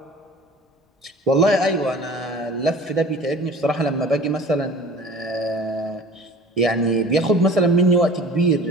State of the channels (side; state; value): both; normal; correlation 0.43